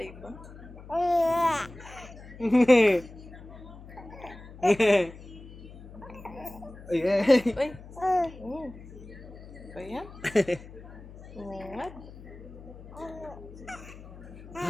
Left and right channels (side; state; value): left; noise; hum, 16 dB below the sound